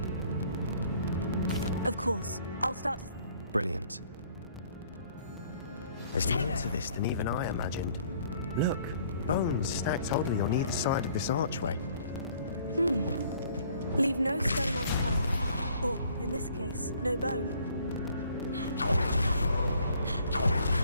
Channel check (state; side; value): inverted; both; correlation -0.59